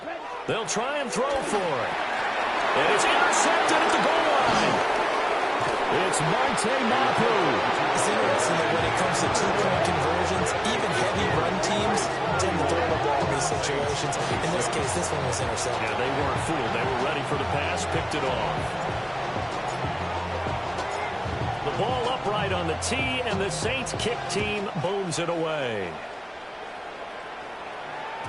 They'll try and throw for it. And it's intercepted at the goal line. It's Marte Mapu. It's interesting that when it comes to 2-point conversions, even heavy run teams tend to throw the ball in these situations. In this case, this one was intercepted. Yeah, they weren't fooled. They were ready for the pass, picked it off. The ball upright on the tee, and the Saints kick team booms it away.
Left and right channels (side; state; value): both; identical; correlation 1.00